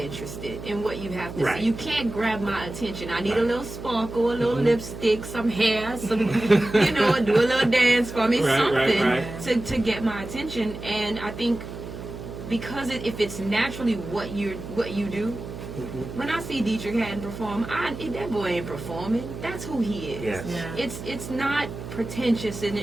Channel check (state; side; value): noise; right; hum, 10 dB below the sound